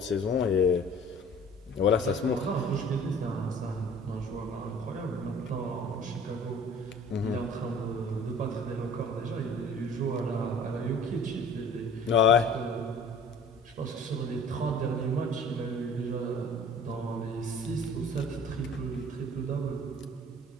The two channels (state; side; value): normal; both; correlation 0.47